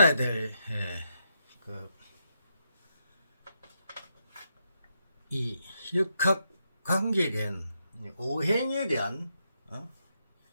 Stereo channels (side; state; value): both; inverted; correlation -0.81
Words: 될 이 역학 관계에 대한 오행에 대한